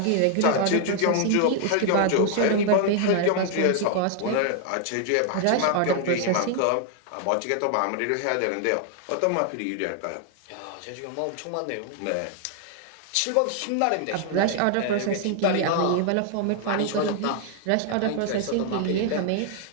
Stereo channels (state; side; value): different; both; correlation 0.00